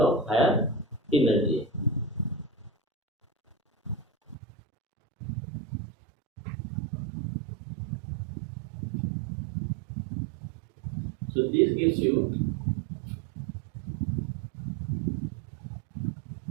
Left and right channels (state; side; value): drops out; left; at 4.4 s